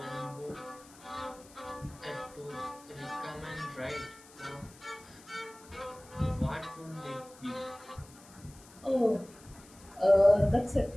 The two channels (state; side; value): noise; left; hiss, 22 dB below the sound